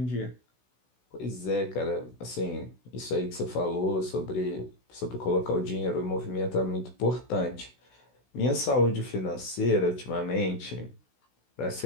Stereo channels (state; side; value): late; right; 16 ms